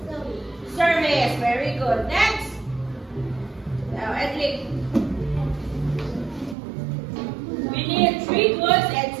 service. Very good. Next. Now, Edley. We need 3 goods and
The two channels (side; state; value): left; drops out; at 6.6 s